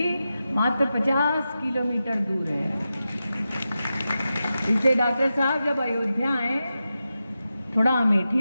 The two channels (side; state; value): both; inverted; correlation -0.91